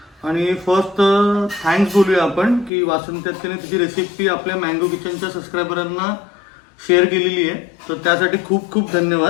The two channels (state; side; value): drops out; right; at 2.7 s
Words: आणि फर्स्ट थँक्स बोलूया आपण की वासंती अक्केने तिची रेसिपी आपल्या मँगो किचनच्या सबस्क्रायबरांना शेअर केलेली आहे, तर त्यासाठी खूप खूप